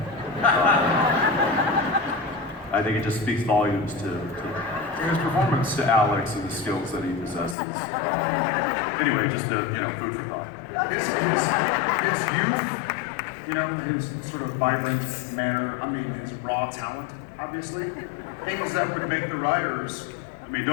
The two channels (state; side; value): drops out; right; at 7.6 s